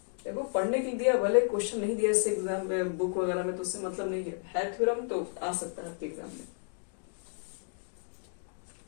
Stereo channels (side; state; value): right; silent; digital silence